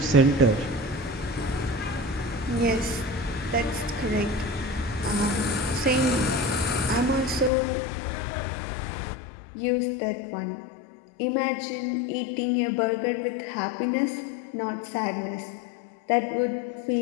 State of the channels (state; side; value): drops out; right; at 7.5 s